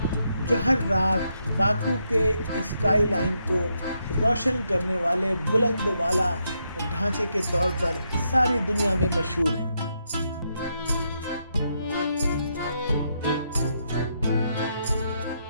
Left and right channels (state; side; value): inverted; both; correlation -0.80